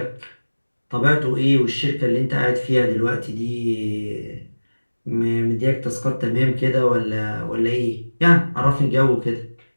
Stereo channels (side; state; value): both; inverted; correlation -1.00